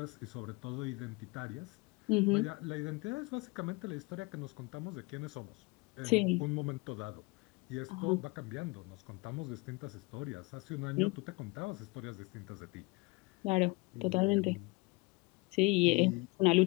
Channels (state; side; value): quieter; right; 26.4 dB